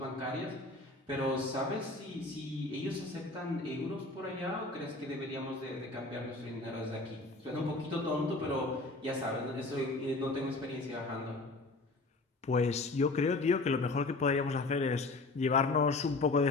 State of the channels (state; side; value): quieter; right; 3.2 dB